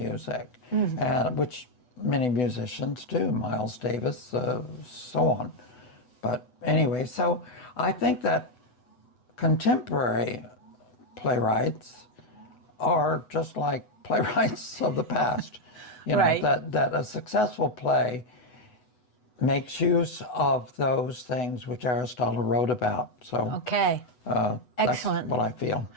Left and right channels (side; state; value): right; late; 8.1 ms